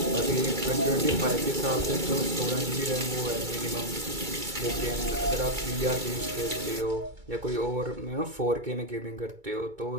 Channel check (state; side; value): late; left; 2.2 ms